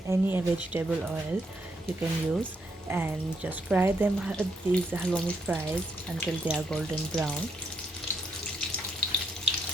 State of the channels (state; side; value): normal; both; correlation 0.76